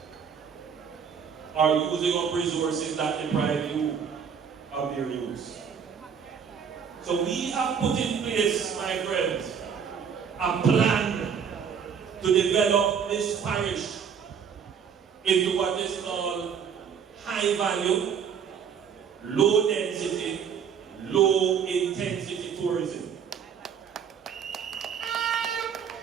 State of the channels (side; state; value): left; quieter; 7.2 dB